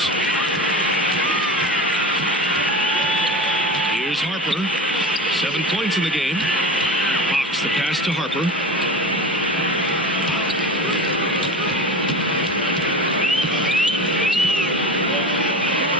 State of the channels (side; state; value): both; normal; correlation 0.30